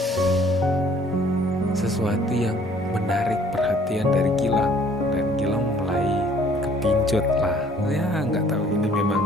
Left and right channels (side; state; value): both; normal; correlation 0.58